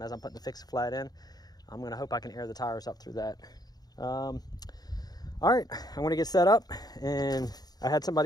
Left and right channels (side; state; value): right; late; 0.19 ms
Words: as I'm putting the fixed flat in. I'm gonna hope I can air the tires up through that. All right, I'm gonna get set up, and I had